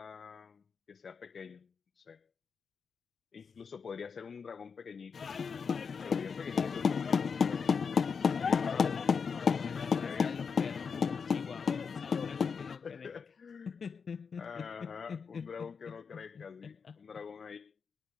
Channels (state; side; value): quieter; right; 5.8 dB